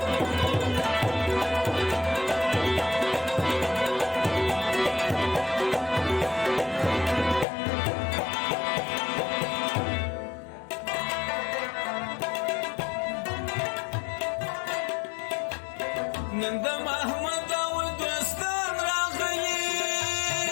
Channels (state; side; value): drops out; right; at 7.5 s